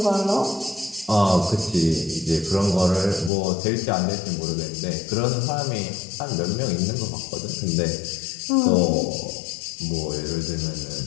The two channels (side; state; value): right; drops out; at 3.3 s